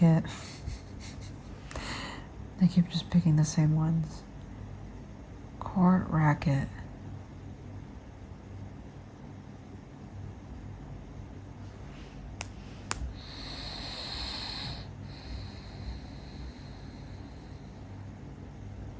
I keep just picking the same ones. Court, racket.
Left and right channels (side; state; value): both; identical; correlation 1.00